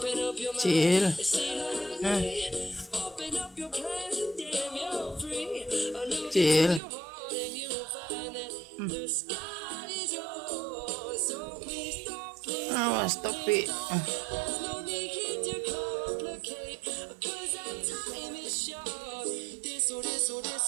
up your mind. Chill. Open up your plans and damn, you're free. Look Chill. into your heart and you'll find that the sky is yours. So please don't, Stop it. there's no need to complicate. Cause our time is short.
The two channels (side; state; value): left; drops out; at 6.8 s